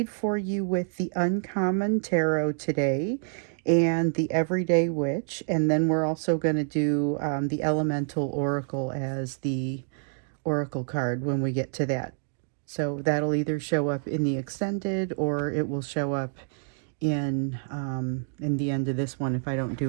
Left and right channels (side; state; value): left; silent; digital silence